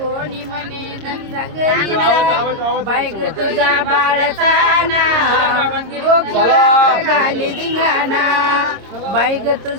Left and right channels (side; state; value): left; late; 26 ms